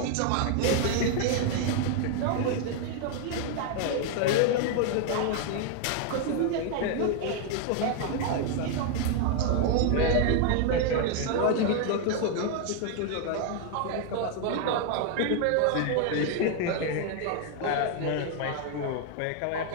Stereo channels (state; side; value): different; both; correlation 0.00